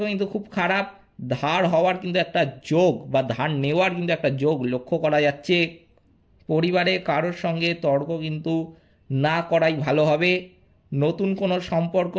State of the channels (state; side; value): identical; both; correlation 1.00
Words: কিন্তু খুব খারাপ। ধার হওয়ার কিন্তু একটা যোগ বা ধার নেওয়ার কিন্তু একটা যোগ লক্ষ্য করা যাচ্ছে। পরিবারে কারোর সঙ্গে তর্ক কিন্তু না করাই ভালো হবে। নতুন কোনো সম্পর্ক